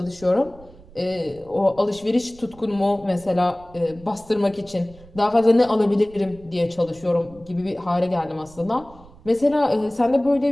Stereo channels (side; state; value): right; noise; rumble, 23 dB below the sound